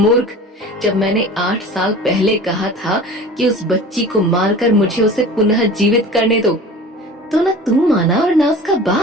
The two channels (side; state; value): both; normal; correlation 0.39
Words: जब मैंने 8 साल पहले कहा था कि उस बच्ची को मारकर मुझे उसे पुनः जीवित करने दो, तो न तू माना और न उसका